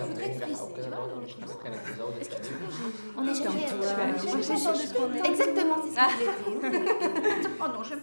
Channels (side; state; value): both; inverted; correlation -1.00